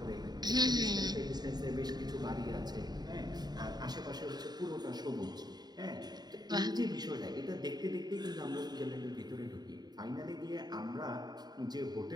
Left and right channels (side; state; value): left; late; 0.20 ms